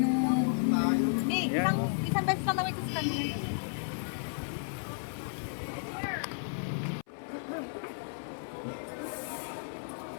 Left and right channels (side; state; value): right; silent; 56 dB below the other